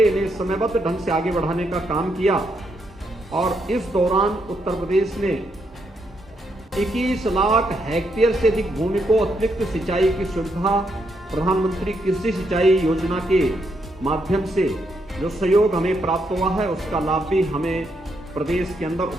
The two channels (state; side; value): normal; both; correlation 0.78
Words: इन्हें समयबद्ध ढंग से आगे बढ़ाने का काम किया और इस दौरान उत्तर प्रदेश ने 21 लाख हेक्टेयर से अधिक भूमि को अतिरिक्त सिंचाई की सुविधा प्रधानमंत्री कृषि सिंचाई योजना के माध्यम से जो सहयोग हमें प्राप्त हुआ है, उसका लाभ भी हमें प्रदेश के अंदर